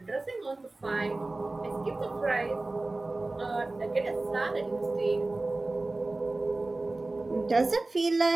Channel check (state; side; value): quieter; left; 3.1 dB